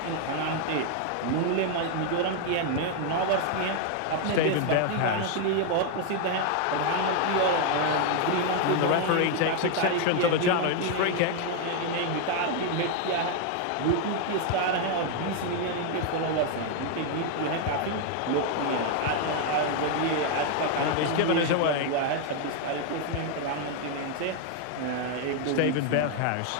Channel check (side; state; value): both; different; correlation 0.00